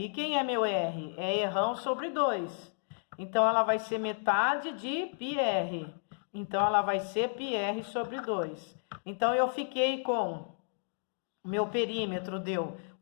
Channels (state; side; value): silent; right; digital silence